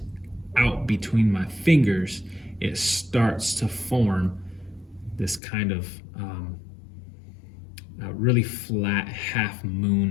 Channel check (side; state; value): right; drops out; at 5.4 s